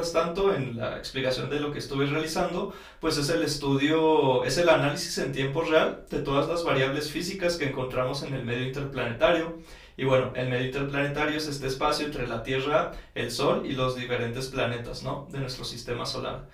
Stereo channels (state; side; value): identical; both; correlation 1.00